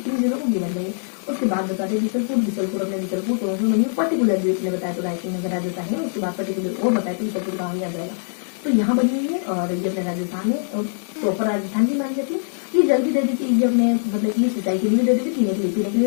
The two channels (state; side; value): silent; right; digital silence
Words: किन जिलों को गिवन नहीं है। उसके बाद बता दें बिसलपुर अपने बिसलपुर टोंक में बनी हुई, पर्टिकुलरली अपने बताया तो रायसिंह नगर आ जाता है। उसके बाद पर्टिकुलर और बताया तो बिसलपुर गाँव ही आ जाएगा। तो यहाँ बनी हुई है और ये अपने राजस्थान है, प्रॉपर राजस्थान की मानी जाती है। ये जल भी दे देती है, ये अपने मतलब कि सिंचाई के लिए भी दे देती है, पीने के